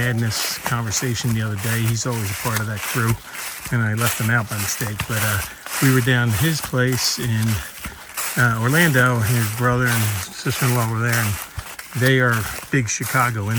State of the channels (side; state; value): both; identical; correlation 1.00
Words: conversation the other day. He's always a part of that crew, and I left him out by mistake. But we were down at his place in Orlando, and his brother and sister-in-law were there, and they are big